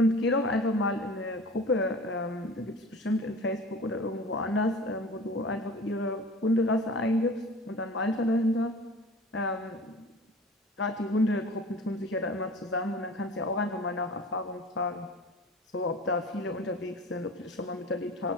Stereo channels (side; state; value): both; normal; correlation 0.40